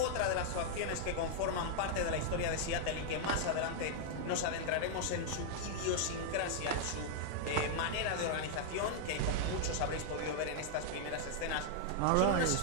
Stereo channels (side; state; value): both; different; correlation -0.01